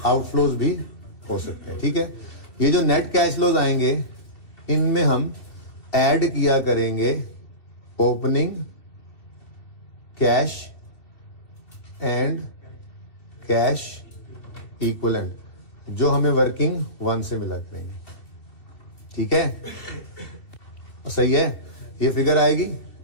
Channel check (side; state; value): right; late; 2.6 ms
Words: आउटफ्लोज भी हो सकते हैं, ठीक है। ये जो नेट कैश फ्लोज आएंगे इनमें हम ऐड किया करेंगे opening cash and cash equivalent, जो हमें वर्किंग 1 से मिला करेंगे, ठीक है, सही है। ये फिगर आएगी,